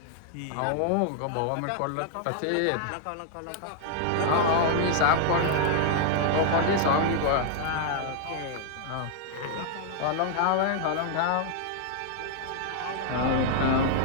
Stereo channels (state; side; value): different; both; correlation -0.01